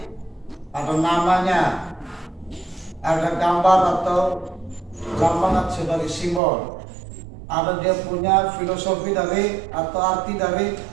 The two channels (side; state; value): left; drops out; at 6.4 s